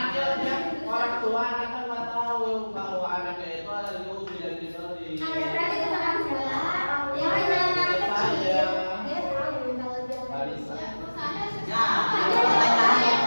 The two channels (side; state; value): both; inverted; correlation -1.00